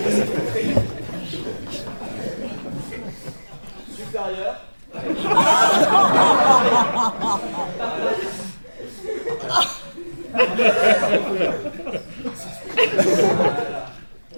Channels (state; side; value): inverted; both; correlation -1.00